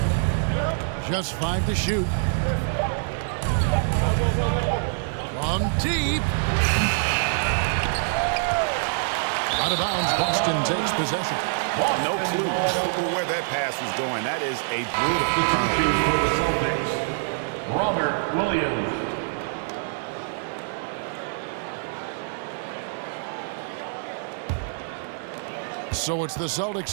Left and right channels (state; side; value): silent; left; digital silence